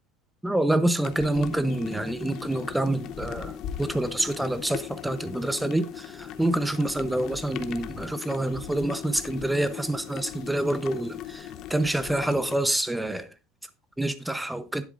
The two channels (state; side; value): normal; both; correlation 0.90